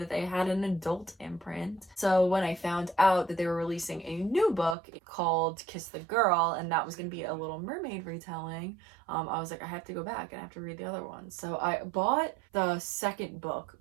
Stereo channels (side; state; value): left; drops out; at 4.8 s